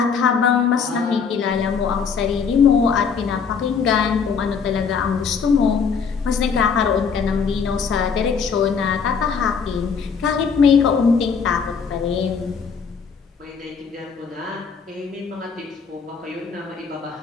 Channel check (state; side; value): quieter; right; 6.0 dB